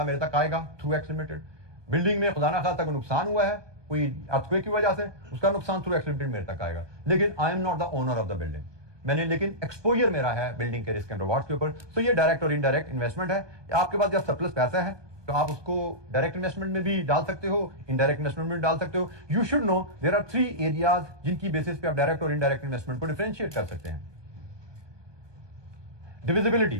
मेरे तक आएगा थ्रू एक्स लिमिटेड। बिल्डिंग में खुदा ना खास्ता कोई नुकसान हुआ है, कोई अर्थक्वेक की वजह से, उसका नुकसान थ्रू एक्स लिमिटेड मेरे तक आएगा, लेकिन I am not the owner of the building. मैंने लेकिन एक्सपोजर मेरा है बिल्डिंग के रिस्क एंड रिवॉर्ड्स के ऊपर। तो ये डायरेक्ट और इनडायरेक्ट इन्वेस्टमेंट है। आपके पास जब सरप्लस पैसा है तो आप उसको डायरेक्ट इन्वेस्टमेंट में भी डाल सकते हो, इनडायरेक्ट इन्वेस्टमेंट में भी डाल सकते हो। You should know there are 3 areas जिनकी बेसिस पे आप डायरेक्ट और इनडायरेक्ट इन्वेस्टमेंट को डिफरेंशिएट कर सकते हैं। Divisibility,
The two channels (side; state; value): left; late; 1.2 ms